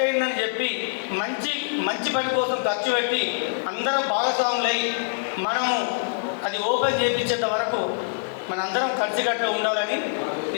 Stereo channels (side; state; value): right; silent; digital silence